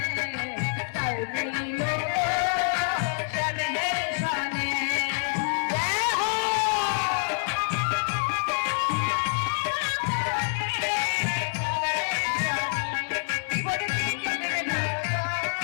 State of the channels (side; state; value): right; silent; 60 dB below the other